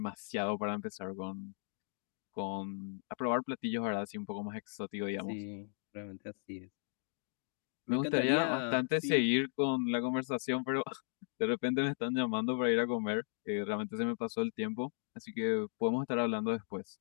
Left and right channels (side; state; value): right; silent; digital silence